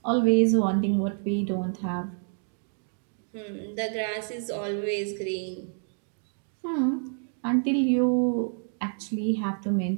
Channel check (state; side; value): silent; left; 55 dB below the other